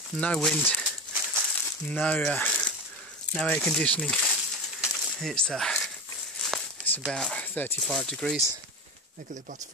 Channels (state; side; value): normal; both; correlation 0.23